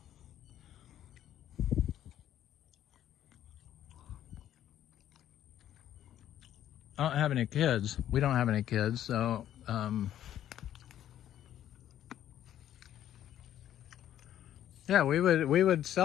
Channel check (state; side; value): quieter; right; 11.4 dB